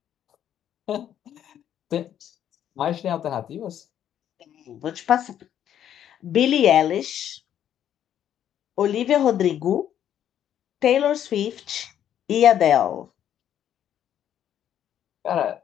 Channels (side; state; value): right; quieter; 10.2 dB